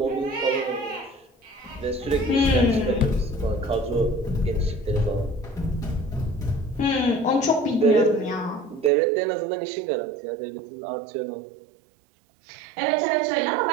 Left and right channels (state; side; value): drops out; left; at 8.9 s